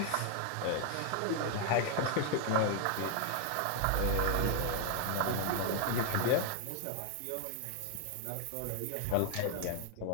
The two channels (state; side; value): different; both; correlation 0.00